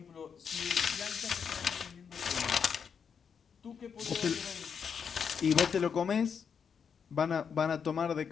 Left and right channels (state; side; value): quieter; right; 6.8 dB